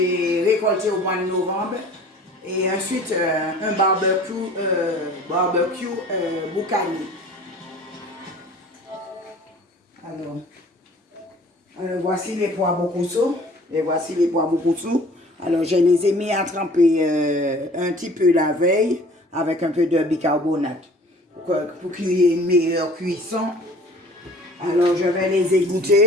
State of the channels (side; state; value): both; normal; correlation 0.49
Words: récolté au mois de novembre. Et ensuite un barbecue boucani. Alors, voici les pois boukoussou. Et voici les pois boukoussou. Alors, je les ai mis à tremper un petit peu la veille avec un peu de bicarbonate pour qu'il y ait une meilleure cuisson. Alors, je vais les